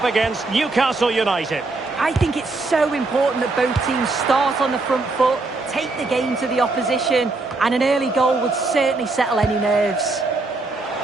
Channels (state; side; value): quieter; left; 3.4 dB